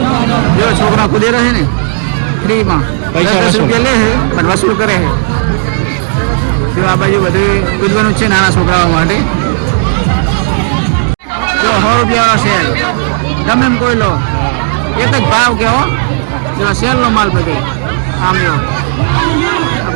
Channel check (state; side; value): silent; left; 58 dB below the other